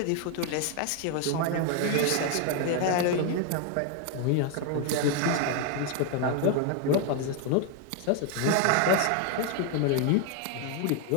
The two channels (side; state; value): both; different; correlation 0.01